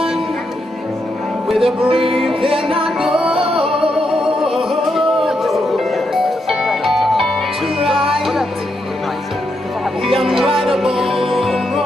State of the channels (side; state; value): both; normal; correlation 0.81